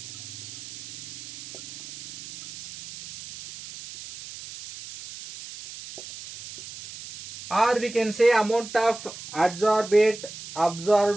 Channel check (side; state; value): right; noise; hiss, 13 dB below the sound